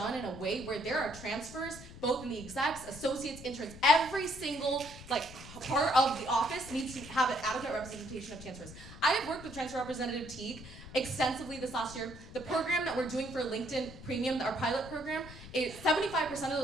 in a way where there are transfers, both in the execs, associates, interns, every single part of the office needs to have an adequate representation of transfers. I have worked with Transfer Representative Teague extensively this last year. The program that we're doing for LinkedIn Premium, our pilot program, 75% of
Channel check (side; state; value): left; noise; rumble, 15 dB below the sound